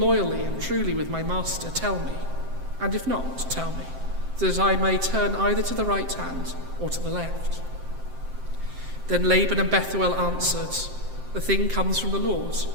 and truly with my master, tell me, and if not, tell me, so that I may turn either to the right hand or to the left." Then Laban and Bethuel answered, "The thing comes from the Lord.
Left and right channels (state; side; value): late; left; 7.6 ms